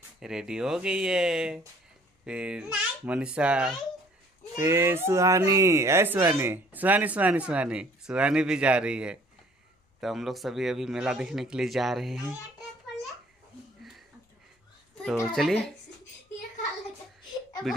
रेडी हो गई है। फिर मनीषा, फिर सुहानी भी जा रही है। तो हम लोग सभी अभी मेला देखने के लिए जा रहे हैं। तो चलिए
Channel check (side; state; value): both; normal; correlation 0.57